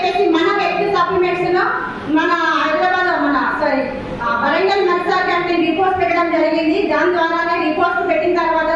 మన వ్యక్తి సప్లిమెంట్స్ లో మన హైదరాబాద్ వరంగల్ మెర్సా క్యాంటీన్ రిపోర్ట్స్ పెట్టడం జరిగింది. దాని ద్వారానే రిపోర్ట్స్ పెట్టిన తర్వాత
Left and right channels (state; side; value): identical; both; correlation 1.00